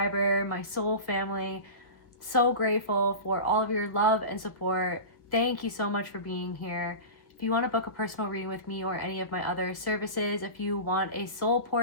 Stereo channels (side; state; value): right; late; 1.5 ms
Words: my soul family, so grateful for all of your love and support. Thank you so much for being here. If you want to book a personal reading with me or any of my other services, if you want a soul